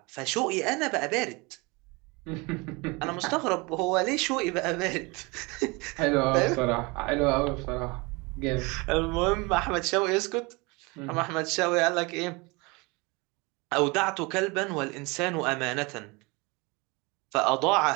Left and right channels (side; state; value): left; quieter; 26.6 dB